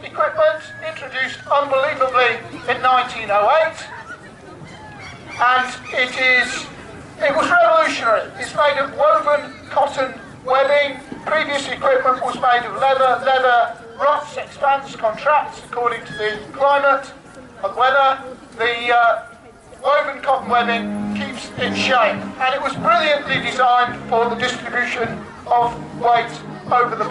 equipment, introduced unbelievably in 1908, and it was revolutionary. It's made of woven cotton webbing. Previous equipment was made of leather. Leather rots, expands, contracts according to the climate and weather. The woven cotton webbing keeps its shape, and it was brilliantly designed for the distribution of weight over the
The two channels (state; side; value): identical; both; correlation 1.00